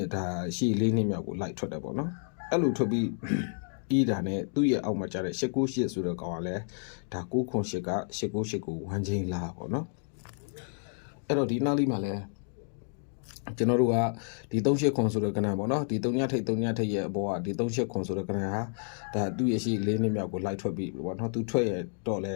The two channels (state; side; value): silent; right; 57 dB below the other